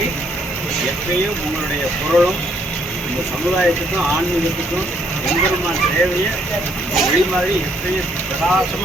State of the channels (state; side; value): normal; both; correlation 0.69